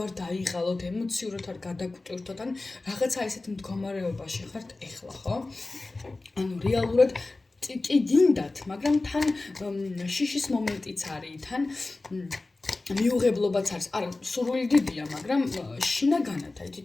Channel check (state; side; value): quieter; right; 3.2 dB